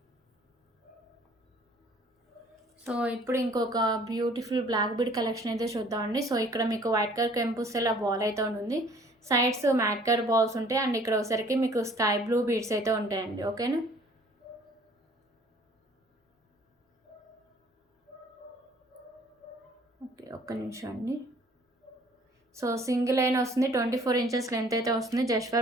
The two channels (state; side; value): normal; both; correlation 0.55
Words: సో ఇప్పుడు ఇంకొక బ్యూటిఫుల్ బ్లాక్ బీడ్ కలెక్షన్ అయితే చూద్దామండి. సో ఇక్కడ మీకు వైట్ కలర్ కెంపుస్ ఇలా బాల్ అయితే ఉంటుంది. సైడ్స్ మ్యాట్ కలర్ బాల్స్ ఉంటాయి అండ్ ఇక్కడ ఒకసారికి మీకు స్కై బ్లూ బీడ్స్ అయితే ఉంటాయండి. ఓకేనా. ఓకే, ఒక్క నిమిషం అండి. సో సింగిల్ లైన్ వస్తుంది, 24 ఇంచెస్ లెంత్ అయితే వస్తుంది. జస్ట్